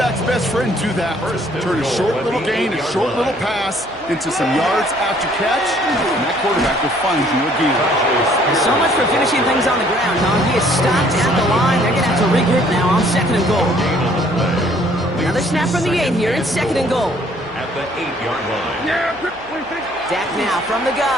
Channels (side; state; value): right; noise; hum, 25 dB below the sound